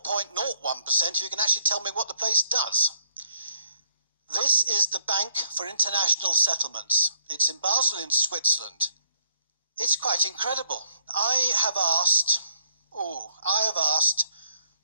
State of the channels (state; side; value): inverted; both; correlation -0.67